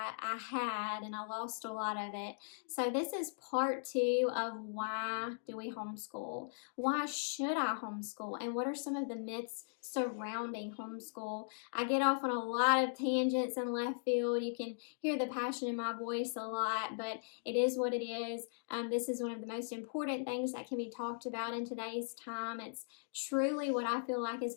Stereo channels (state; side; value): silent; right; digital silence